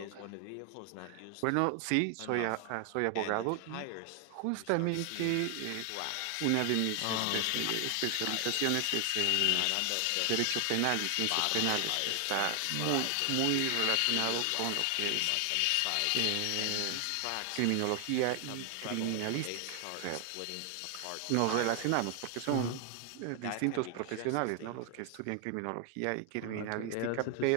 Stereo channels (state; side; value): different; both; correlation 0.00